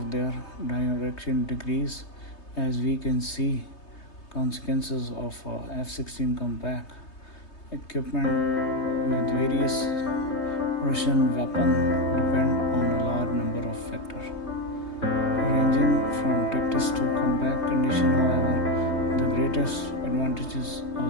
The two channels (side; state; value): right; late; 3.2 ms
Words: their direction decrease, as we can see consequences of F-16 combat equipment with various Russian weapons depend on a large number of factors, ranging from tactics to combat condition. However, the greatest advantages